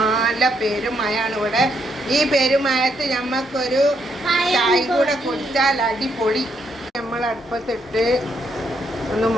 പെരുമയാണ് ഇവിടെ. ഈ പെരുമയത്ത് ഞമ്മക്കൊരു ചായ കൂടെ കുടിച്ചാൽ അടിപൊളി. നമ്മൾ അടുപ്പത്തിട്ട് ഒന്ന്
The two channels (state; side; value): normal; both; correlation 0.75